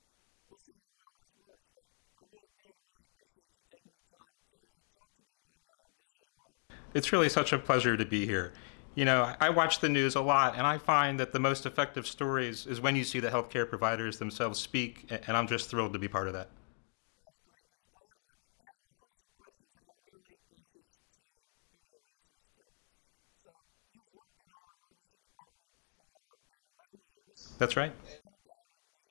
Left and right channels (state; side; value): silent; right; 52 dB below the other